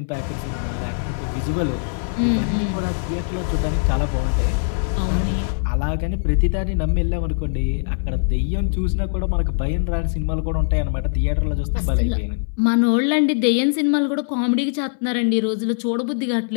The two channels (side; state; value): right; silent; digital silence